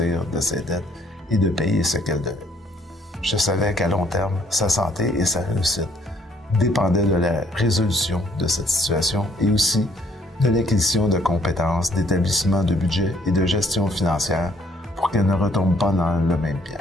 de ses dettes et de payer ce qu'elle devait. Je savais qu'à long terme, sa santé et sa réussite dépendaient de la résolution de cette situation et aussi de l'acquisition de compétences, d'établissement de budget et de gestion financière pour qu'elle ne retombe pas dans le même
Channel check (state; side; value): normal; both; correlation 0.64